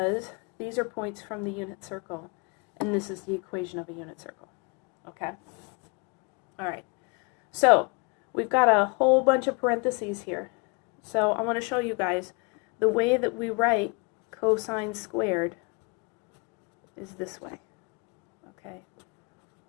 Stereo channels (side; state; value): right; quieter; 31.6 dB